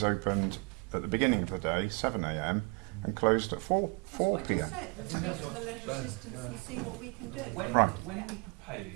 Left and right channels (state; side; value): quieter; left; 30.5 dB